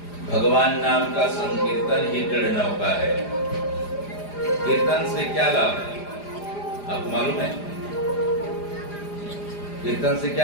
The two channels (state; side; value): late; right; 4.9 ms